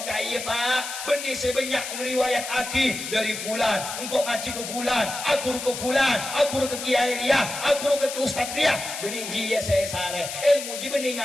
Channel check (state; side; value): noise; left; hiss, 7 dB below the sound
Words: kaya Pak, benih sebanyak ngeriwayat aki dari fulan, engkau ngaji ke fulan, aku ke fulan, aku ke kiai Riyah, aku ke ustaz Riyah. Benih jia saya sare, ilmu ji benih